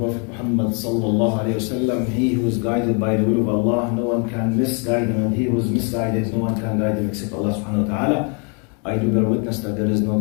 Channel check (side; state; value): right; quieter; 37.0 dB